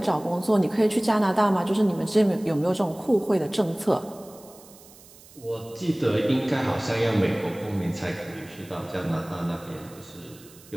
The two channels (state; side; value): noise; right; hiss, 23 dB below the sound